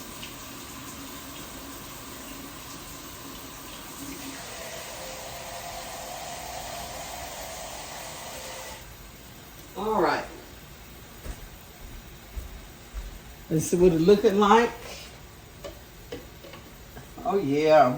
All right. Let's see what it's looking like. Oh,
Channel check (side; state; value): both; identical; correlation 1.00